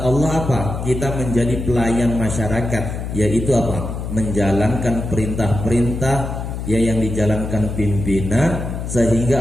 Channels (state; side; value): noise; left; hum, 6 dB below the sound